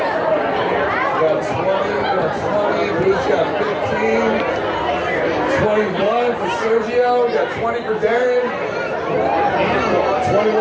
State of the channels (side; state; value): both; identical; correlation 1.00